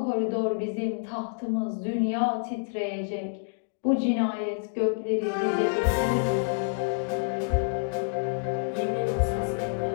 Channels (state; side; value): silent; right; digital silence